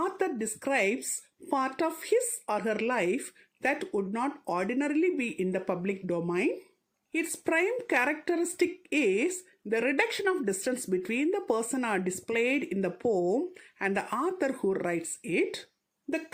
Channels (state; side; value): identical; both; correlation 1.00